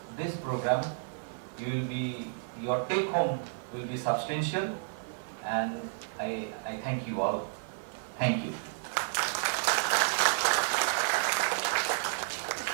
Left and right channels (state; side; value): silent; left; 57 dB below the other